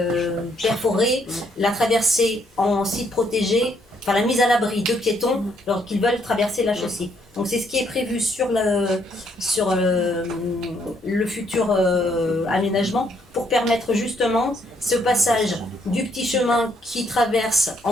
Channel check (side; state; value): both; normal; correlation 0.71